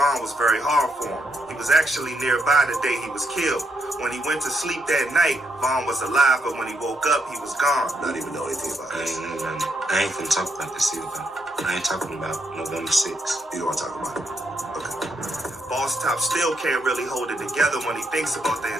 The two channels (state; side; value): normal; both; correlation 0.78